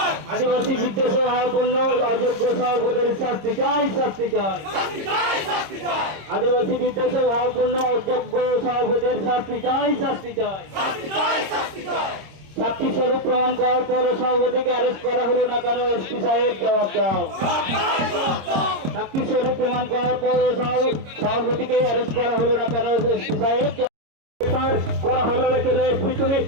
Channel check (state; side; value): late; left; 26 ms